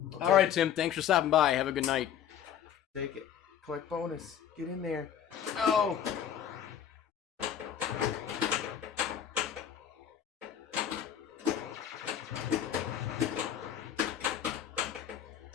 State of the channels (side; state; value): right; quieter; 9.4 dB